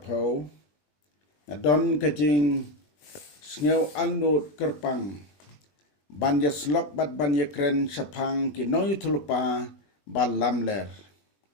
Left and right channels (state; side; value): late; right; 20 ms